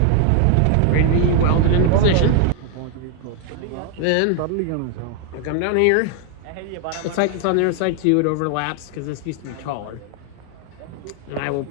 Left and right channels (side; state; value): both; different; correlation 0.00